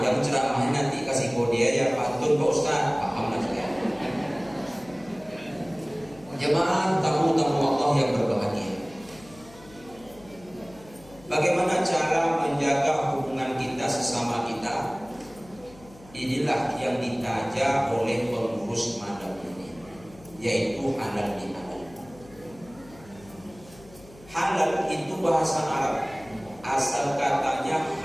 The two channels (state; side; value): noise; left; hum, 23 dB below the sound